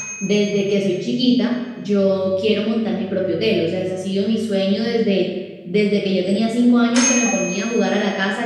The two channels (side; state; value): both; identical; correlation 1.00